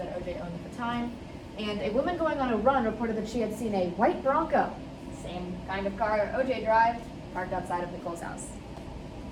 that OJ owned at the time. And a woman going on a run reported that she had seen a white Bronco, same kind of car OJ drive, parked outside of Nicole's house.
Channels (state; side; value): identical; both; correlation 1.00